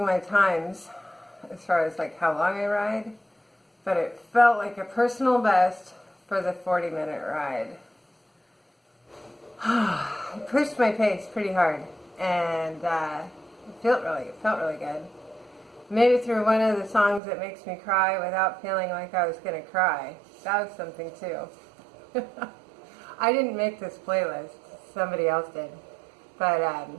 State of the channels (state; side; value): drops out; left; at 17.2 s